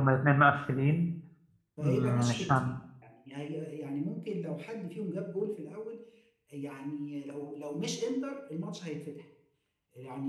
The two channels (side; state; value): both; identical; correlation 1.00